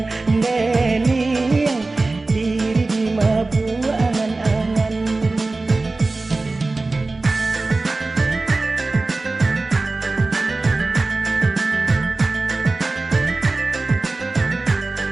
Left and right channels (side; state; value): left; quieter; 3.4 dB